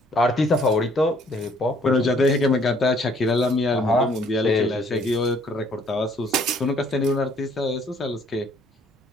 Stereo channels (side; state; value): both; normal; correlation 0.62